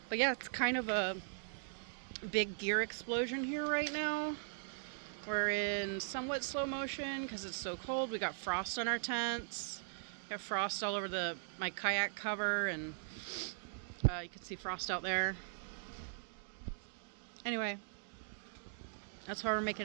yeah, it's kind of a big gear explosion here right now. We're in somewhat slow motion because it's so cold. We got frost on our tents. Got frost all over my kayak cover, and you can see frost out there. Anyway, that's why we're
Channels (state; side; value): silent; left; digital silence